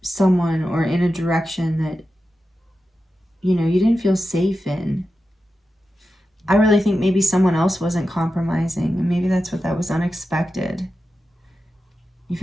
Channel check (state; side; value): normal; both; correlation 0.91